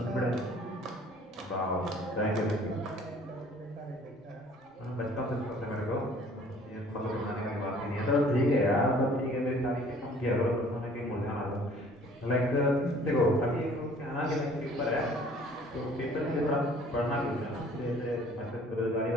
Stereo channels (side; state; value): both; normal; correlation 0.54